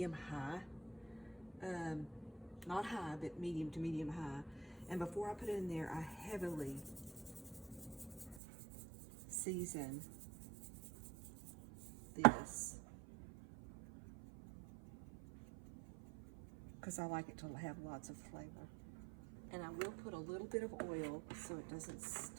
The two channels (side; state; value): left; drops out; at 8.4 s